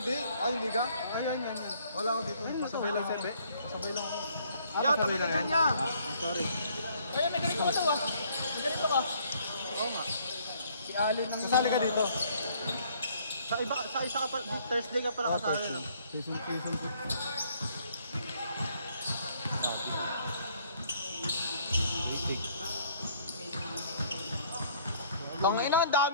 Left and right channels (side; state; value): both; inverted; correlation -0.63